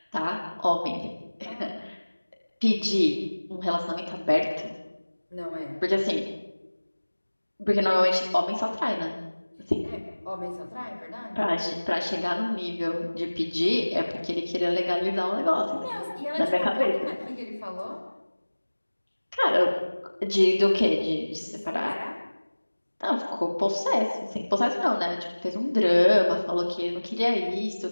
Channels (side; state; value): both; inverted; correlation -1.00